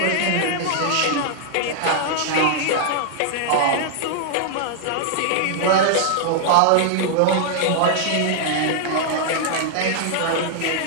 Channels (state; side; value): different; both; correlation -0.01